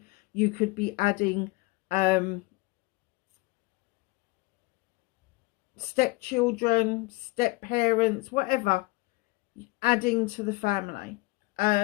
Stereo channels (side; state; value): right; quieter; 23.3 dB